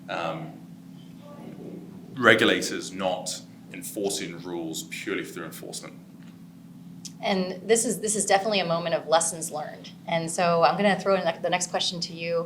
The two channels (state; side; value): identical; both; correlation 1.00